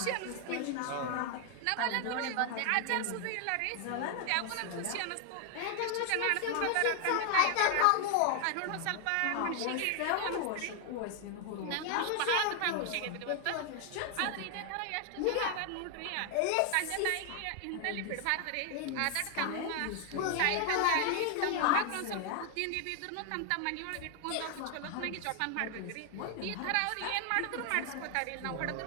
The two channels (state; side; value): different; both; correlation 0.00